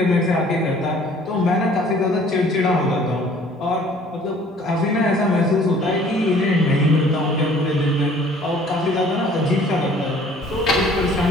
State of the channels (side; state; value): both; normal; correlation 0.54